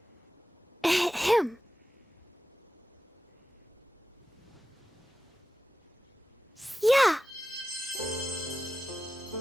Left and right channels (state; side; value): normal; both; correlation 0.93